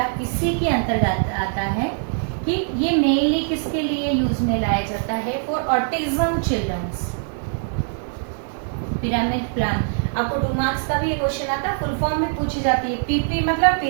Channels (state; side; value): silent; left; 64 dB below the other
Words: इसी के अंतर्गत आता है कि ये मेनली किसके लिए यूज में लाया जाता है? For autism childrens. Pyramid plan आपको 2 मार्क्स का भी ये क्वेश्चन आता है, फुल फॉर्म में पूछी जाती है। PP मतलब